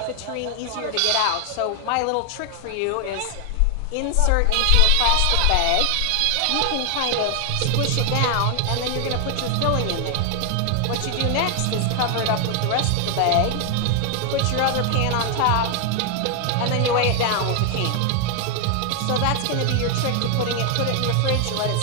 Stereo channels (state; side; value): different; both; correlation 0.00